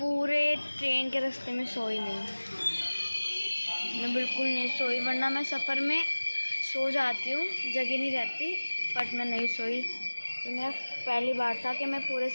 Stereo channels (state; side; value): inverted; both; correlation -1.00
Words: ट्रेन के रास्ते में सोई नहीं, मैं बिल्कुल नहीं सोई, वरना मैं सफ़र में सो जाती हूँ, जगह नहीं रहती, बट मैं नहीं सोई। ये मेरा पहली बार था कि मैं पूरे